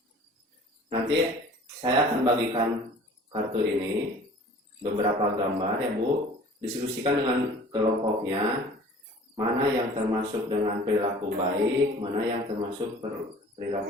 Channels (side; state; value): both; normal; correlation 0.47